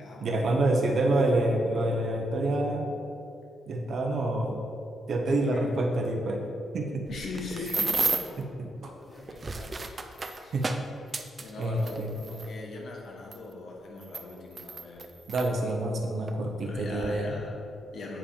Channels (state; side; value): normal; both; correlation 0.81